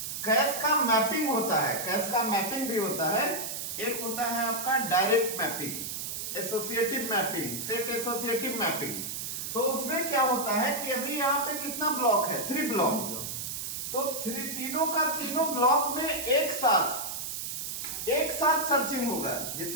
कैश का मैपिंग होता है, कैश का मैपिंग भी होता है। एक होता है आपका direct mapping, associative mapping, set associative mapping. तो उसमें क्या होता है कि अभी यहाँ पे कितना ब्लॉक है? 3 ब्लॉक। तो तीनों का तीनों ब्लॉक में एक साथ सर्चिंग होगा,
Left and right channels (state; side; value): noise; right; hiss, 5 dB below the sound